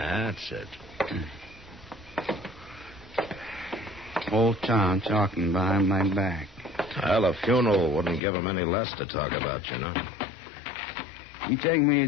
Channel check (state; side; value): drops out; right; at 8.2 s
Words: it. Whole town talking behind my back. Well, a funeral wouldn't give them any less to talk about, you know. You take me